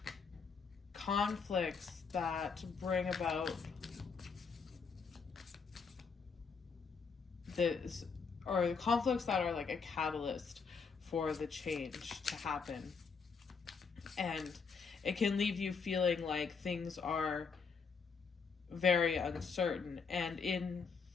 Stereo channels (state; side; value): quieter; right; 5.4 dB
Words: conflicts that bring about this, or conflicts that are like a catalyst for the change to happen. And it can leave you feeling like things are very uncertain. And